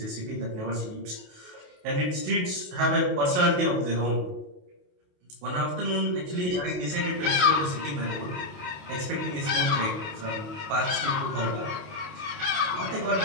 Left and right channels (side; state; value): left; late; 28 ms